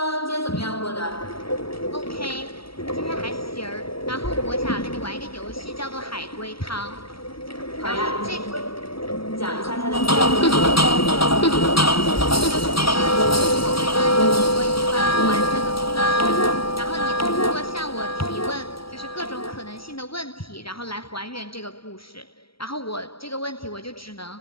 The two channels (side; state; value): right; late; 0.75 ms